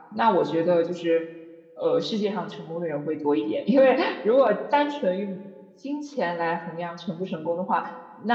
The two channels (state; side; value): identical; both; correlation 1.00